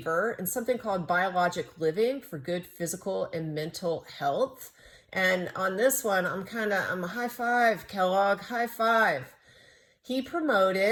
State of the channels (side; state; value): both; identical; correlation 1.00